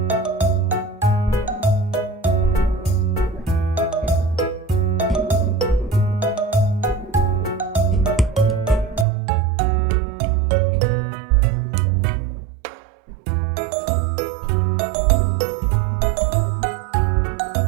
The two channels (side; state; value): left; drops out; at 9.1 s